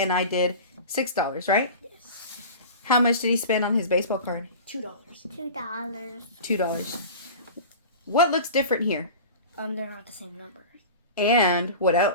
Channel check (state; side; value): inverted; both; correlation -0.35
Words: I did $6, right? Yes. How much did he spend on his baseball card? $2. $2. What looks different here? They're not the same number. And what